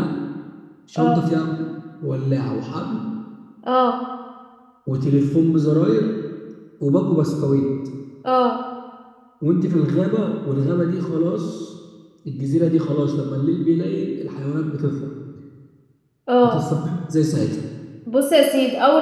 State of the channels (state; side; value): identical; both; correlation 1.00